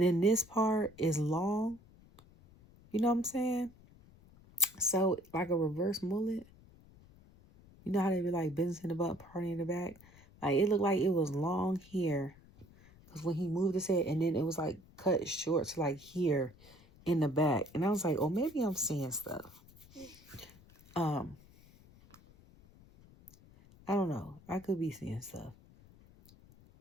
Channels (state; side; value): noise; left; rumble, 24 dB below the sound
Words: then this part is long. You know what I'm saying? So like a reverse mullet. You know how they be like business in the butt, party in the back? Like it looked like it was long here. Because when he moved his head and then it was like cut short to like here in the back. And I was like, oh, maybe I'm seeing stuff. I don't know. I could be seeing stuff.